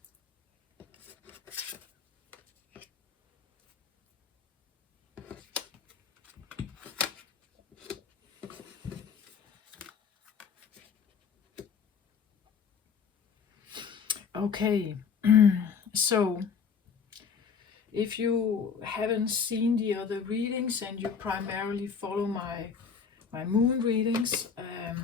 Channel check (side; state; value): right; quieter; 6.2 dB